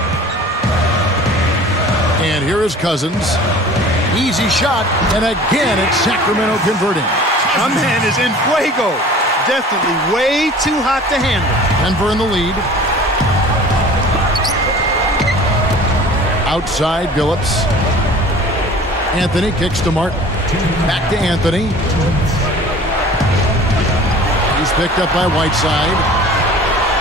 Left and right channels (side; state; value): both; normal; correlation 0.45